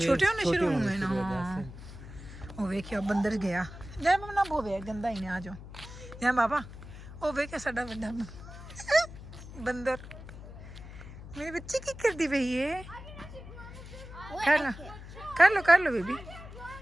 होने शुरू होने हुए ना शुरू हो गए हाँ थे। ओ वेखियो बंदर गया जाने बाबा ना बोवे गंदा ही ने आ जाओ जाने बाबा ओ वेखे साडा वड्डा बंदर मेरी बच्ची की करदी पई है कर लो बेबी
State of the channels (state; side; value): noise; left; hum, 14 dB below the sound